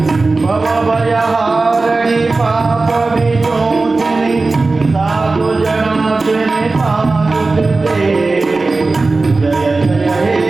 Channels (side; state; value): left; quieter; 3.6 dB